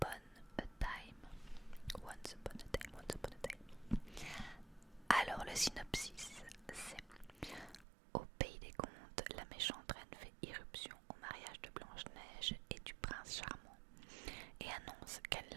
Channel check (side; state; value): left; drops out; at 7.9 s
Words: a Time. Once Upon a Time, Once Upon a Time. Alors le synopsis, c'est: au pays des contes, la méchante reine fait irruption au mariage de Blanche-Neige et du prince charmant et annonce qu'elle